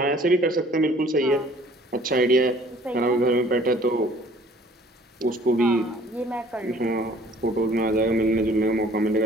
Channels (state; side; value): normal; both; correlation 0.54